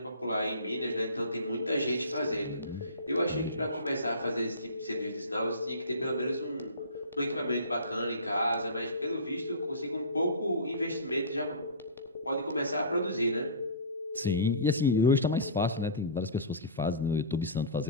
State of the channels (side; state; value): both; inverted; correlation -0.33